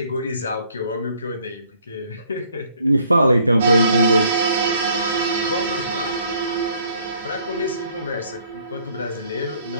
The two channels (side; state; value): both; inverted; correlation -0.63